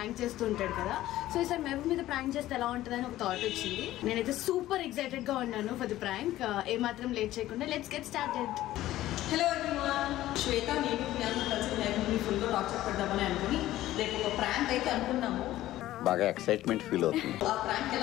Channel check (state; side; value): quieter; right; 14.8 dB